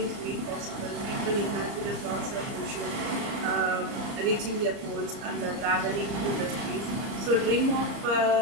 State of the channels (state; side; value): late; left; 30 ms